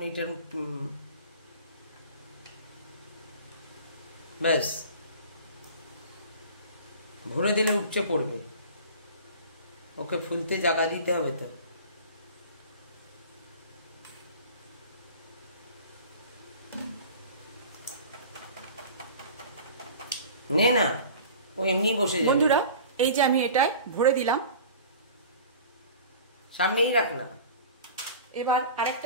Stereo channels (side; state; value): both; inverted; correlation -0.41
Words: এটা ব্যাস ভরে দিলে উপচে পড়বে, ওকে ফুলতে জায়গা দিতে হবে। তো নে না, ও এমনি বসে যাবে। বন্ধুরা এই যে আমি এটাই ভরে দিলাম, সামনেই রাখ না। এবার